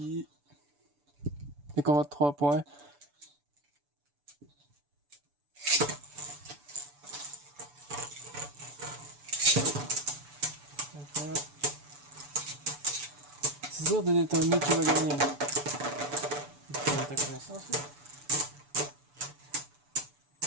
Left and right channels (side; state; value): left; late; 6.9 ms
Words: Les combats de 3 points. Voilà. C'est dur de déterminer qui va gagner. Ta connaissance, là.